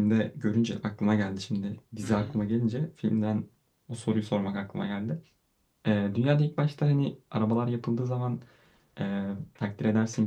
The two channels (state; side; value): identical; both; correlation 1.00